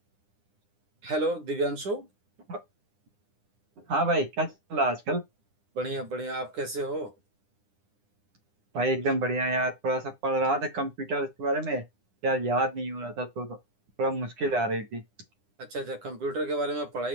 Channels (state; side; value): late; left; 9.9 ms